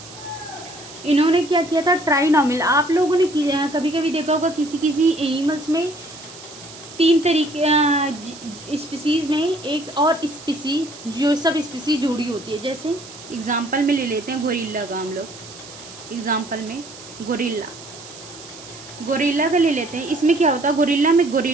इन्होंने क्या किया था, ट्राइनोमियल। आप लोगों ने कभी कभी देखा होगा किसी एनिमल्स में 3 तरीके स्पीसीज़ में एक और स्पीसीज, जो सब स्पीसीज जुड़ी होती है। जैसे एग्जांपल में ले लेते हैं गोरिल्ला का हम लोग, एग्जांपल में गोरिल्ला, गोरिल्ला का ले लेते हैं। इसमें क्या होता है, गोरिल्ला में,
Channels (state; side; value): noise; right; hiss, 17 dB below the sound